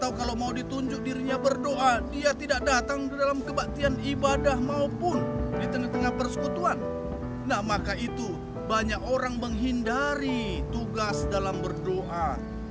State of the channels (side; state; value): both; identical; correlation 1.00